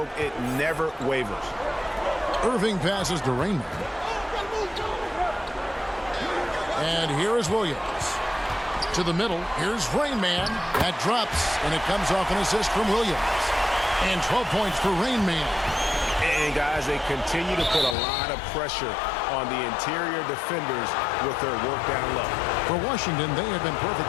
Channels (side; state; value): right; drops out; at 17.9 s